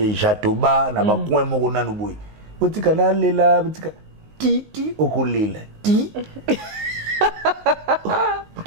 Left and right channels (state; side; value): late; left; 19 ms